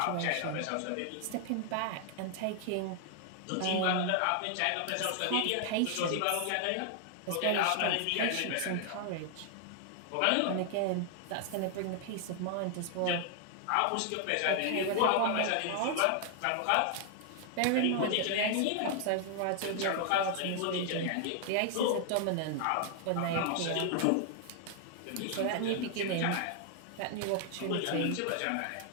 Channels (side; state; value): both; different; correlation 0.00